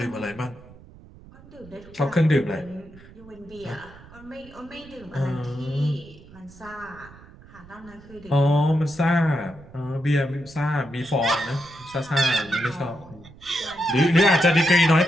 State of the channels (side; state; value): right; noise; rumble, 21 dB below the sound